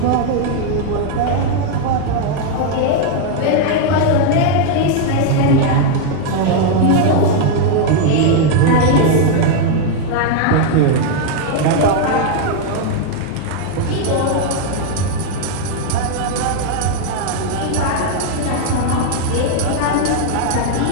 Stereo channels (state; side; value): different; both; correlation 0.00